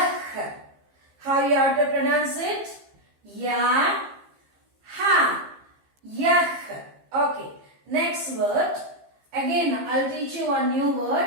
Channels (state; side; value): late; left; 15 ms